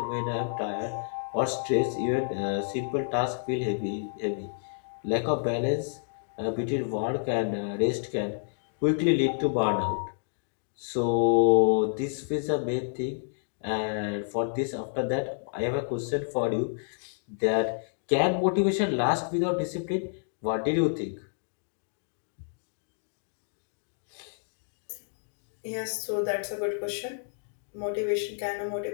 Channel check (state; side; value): silent; right; digital silence